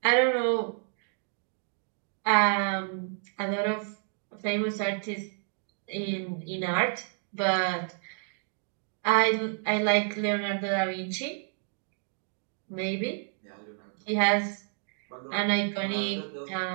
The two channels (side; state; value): left; silent; 58 dB below the other